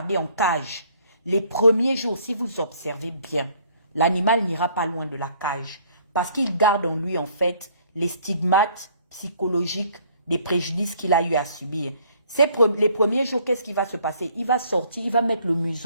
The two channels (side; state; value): both; inverted; correlation -0.61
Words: en cage. Les premiers jours, si vous observez bien, l'animal n'ira pas loin de la cage parce qu'il garde en lui en fait les stigmates psychologiques des préjudices qu'il a eu à subir. Les premiers jours, qu'est-ce qui va se passer? Il va sortir, il va mettre le